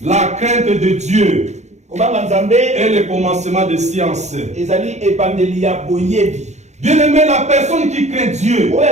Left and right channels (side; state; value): left; late; 0.33 ms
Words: La crainte de Dieu est le commencement de science. Bien aimé, la personne qui craint Dieu,